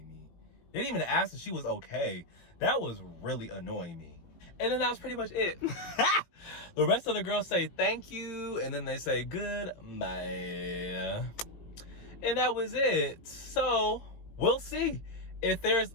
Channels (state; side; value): late; right; 18 ms